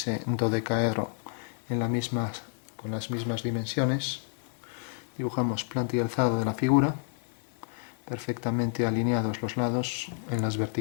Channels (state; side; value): silent; right; 58 dB below the other